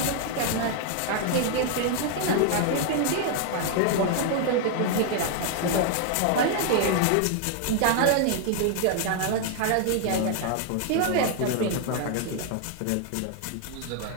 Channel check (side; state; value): both; different; correlation 0.00